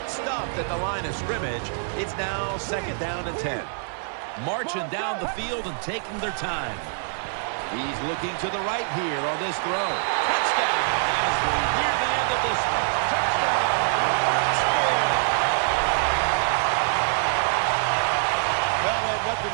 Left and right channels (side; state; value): left; silent; 57 dB below the other